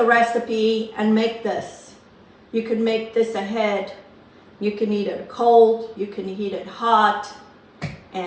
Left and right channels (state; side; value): identical; both; correlation 1.00